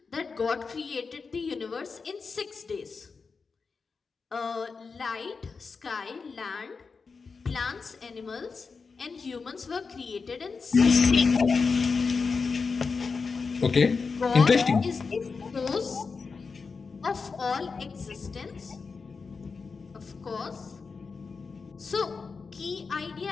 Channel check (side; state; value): right; quieter; 4.8 dB